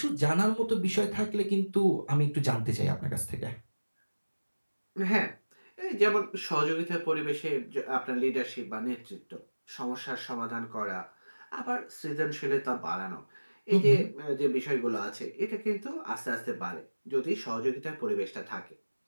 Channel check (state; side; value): inverted; both; correlation -1.00